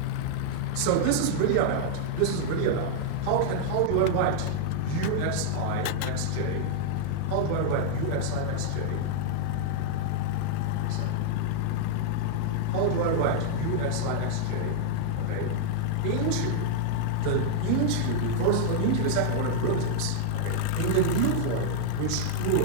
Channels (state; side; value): different; both; correlation -0.01